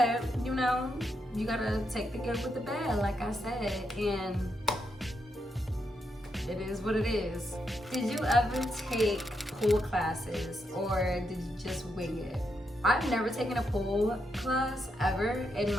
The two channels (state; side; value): normal; both; correlation 0.81